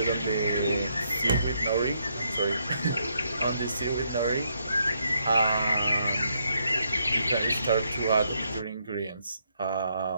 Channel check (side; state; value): both; inverted; correlation -0.76